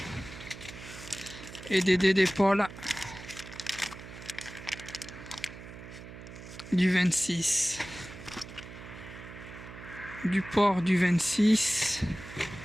Et des dés d'épaule du 26. Du porc du 26.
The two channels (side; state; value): right; noise; hum, 14 dB below the sound